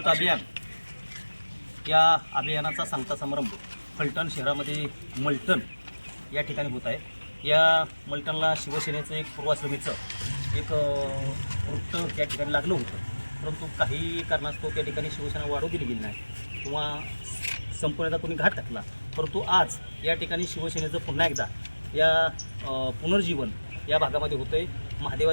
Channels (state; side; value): inverted; both; correlation -1.00